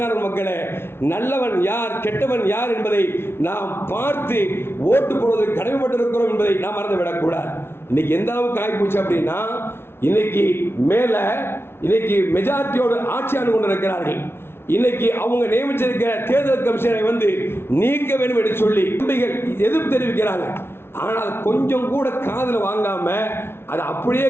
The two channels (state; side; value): late; right; 0.12 ms